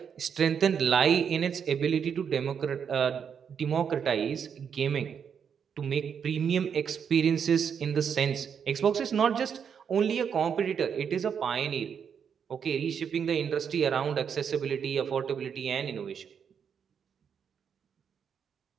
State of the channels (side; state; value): left; quieter; 7.3 dB